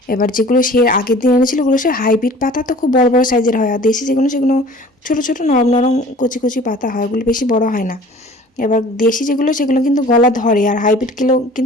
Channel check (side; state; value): both; normal; correlation 0.47